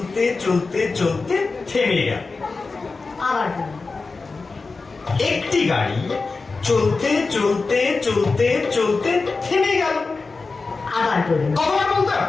চলতে চলতে থেমে গেল। আবার বলুন। একটি গাড়ি চলতে চলতে চলতে চলতে থেমে গেল। আবার বলুন। কতবার বলতে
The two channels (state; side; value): quieter; right; 4.0 dB